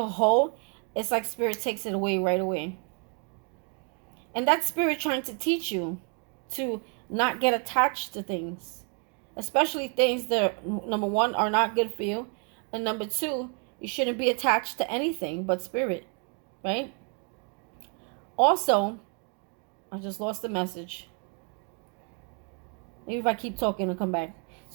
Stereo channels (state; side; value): quieter; left; 39.3 dB